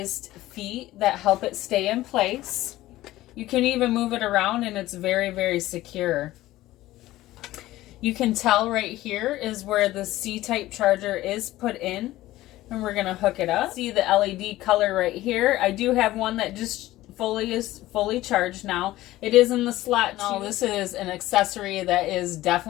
feet that help it stay in place. You can even move it around and it's very, very secure. You can tell right here is where the C-type charger is put in. And we're going to hook it up. See the LED color right here. I do have one that just is fully charged now. It is in the slot. Now this is an accessory that is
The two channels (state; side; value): quieter; right; 16.2 dB